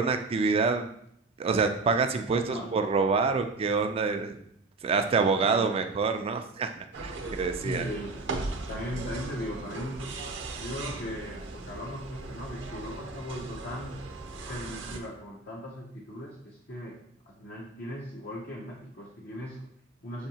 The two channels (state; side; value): quieter; left; 3.6 dB